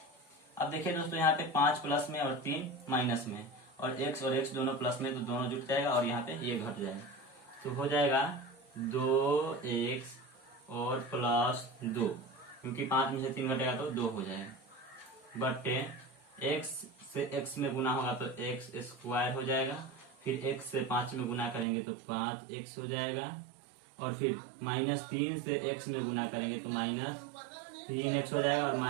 अब देखिए दोस्तों यहाँ पे 5 प्लस में और 3 माइनस में, और x और x दोनों प्लस में तो दोनों जुट जाएगा, और यहाँ पे ये घट जाएगा, तो हो जाएगा 2x और प्लस 2, क्योंकि 5 में से 3 घटेगा तो 2 हो जाएगा, बटे x से x में गुना होगा तो x स्क्वायर हो जाएगा, फिर x से 5 में गुना करेंगे तो 5x हो जाएगा, और फिर माइनस 3 से x में गुना करेंगे तो माइनस 3x हो जाएगा, और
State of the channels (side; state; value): left; drops out; at 21.7 s